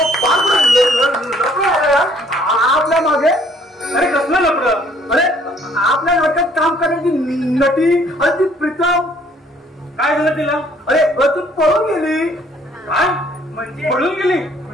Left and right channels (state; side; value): normal; both; correlation 0.61